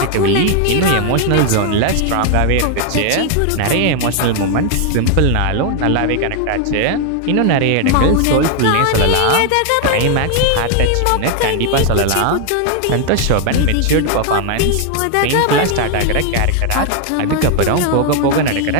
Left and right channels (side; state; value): both; different; correlation 0.01